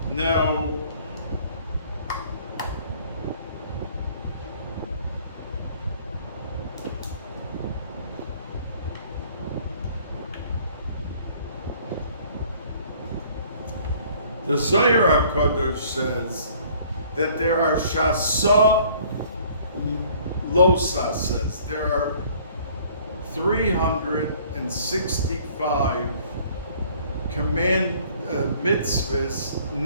Now, the Zohar HaKadosh says that there are Shasa Losa, says there are 365 mitzvahs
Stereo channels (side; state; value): both; inverted; correlation -0.56